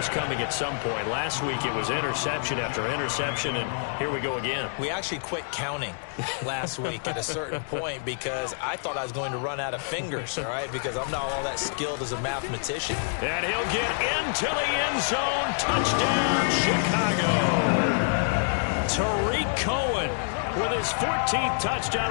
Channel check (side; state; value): right; silent; 60 dB below the other